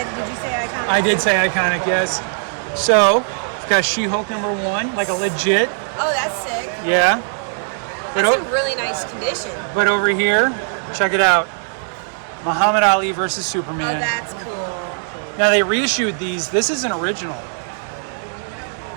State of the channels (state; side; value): silent; left; digital silence